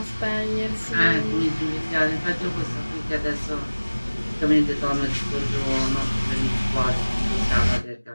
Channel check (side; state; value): both; inverted; correlation -1.00